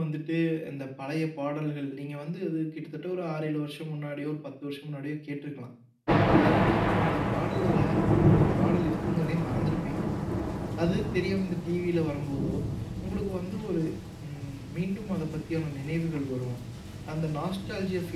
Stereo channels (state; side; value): identical; both; correlation 1.00